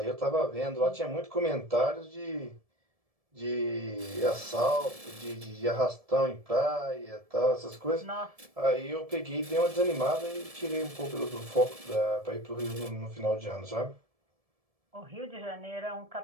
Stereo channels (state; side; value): late; left; 1.7 ms